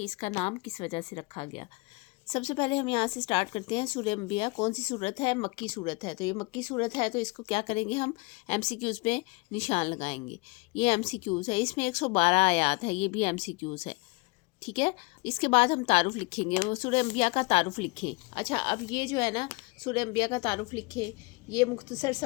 اس کا نام کس وجہ سے رکھا گیا۔ سب سے پہلے ہم یہاں سے سٹارٹ کرتے ہیں۔ سورہ انبیاء کون سی صورت ہے؟ مکی صورت ہے۔ تو یہ مکی صورت ہے تو اس کو کیا کریں گے، ہم ایم سی کیوز پہ نشان لگائیں گے۔ یہ ایم سی کیوز ہے، اس میں 112 آیات ہے، یہ بھی ایم سی کیوز ہے، ٹھیک ہے۔ اس کے بعد ہم تعارف لکھیں گے، وہ سورہ انبیاء کا تعارف لکھیں۔ اچھا، اب یہ جو ہے نا سورہ انبیاء کا تعارف لکھیں، یہ مختصر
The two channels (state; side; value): quieter; right; 27.9 dB